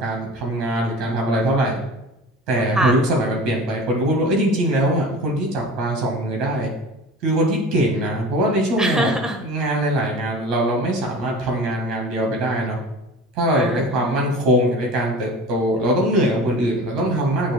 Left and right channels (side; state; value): both; normal; correlation 0.38